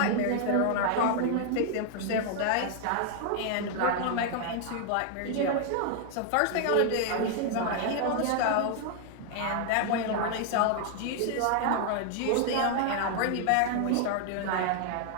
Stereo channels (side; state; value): both; different; correlation 0.00